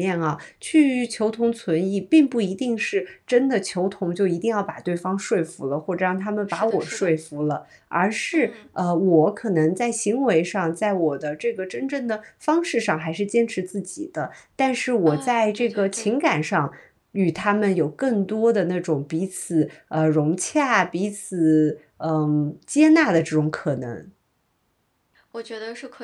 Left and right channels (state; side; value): identical; both; correlation 1.00